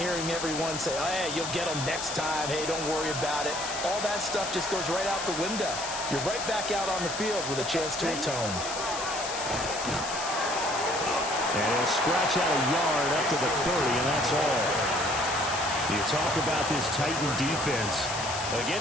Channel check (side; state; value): left; noise; hiss, 6 dB below the sound